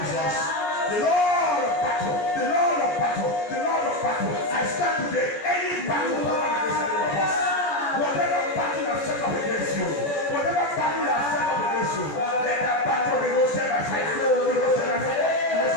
Jesus. The Lord of battle. The Lord of battle. The Lord of battle. I stand today. Any battle that against any of us. Whatever battle that set up against you. Whatever battle that set up against you. Let that battle be roasted by fire. Be roasted by fire.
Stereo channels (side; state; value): right; late; 14 ms